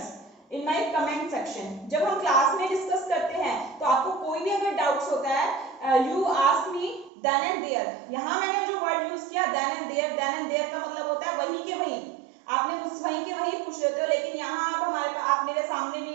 in my comment section. जब हम क्लास में डिस्कस करते हैं तो आपको कोई भी अगर डाउट्स होता है, you ask me then and there. यहाँ मैंने जो वर्ड यूज किया then and there, then and there का मतलब होता है वहीं के वहीं, आपने मुझसे वहीं के वहीं पूछ लेते हो। लेकिन यहाँ आप हमारे पास, आप मेरे सामने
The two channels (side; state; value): left; drops out; at 7.1 s